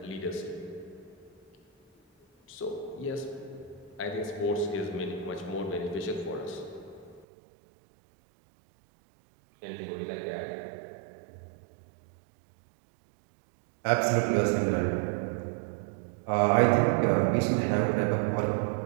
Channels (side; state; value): left; drops out; at 7.2 s